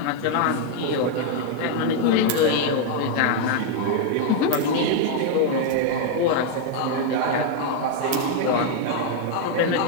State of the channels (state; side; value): different; both; correlation 0.00